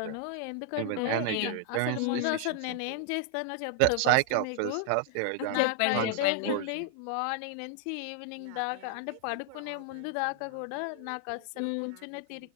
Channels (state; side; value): different; both; correlation 0.00